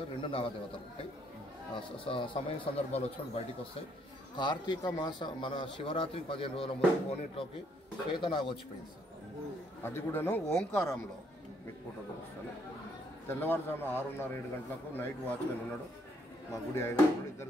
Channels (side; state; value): both; normal; correlation 0.69